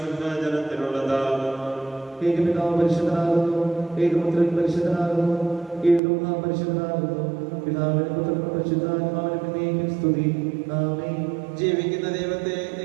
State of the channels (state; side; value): drops out; left; at 6.0 s